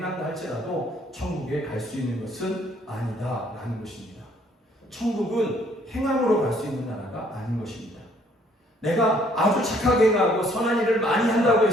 할지라도 천국에 갈 수 있는 것은 아니다라는 것입니다. 천국은 행함으로 갈 수 있는 나라가 아닌 것입니다. 내가 아주 착하게 행하고 선한 일을 많이 한다고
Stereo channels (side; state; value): both; normal; correlation 0.63